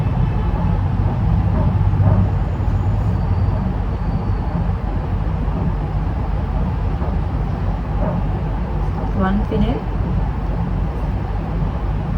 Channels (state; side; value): identical; both; correlation 1.00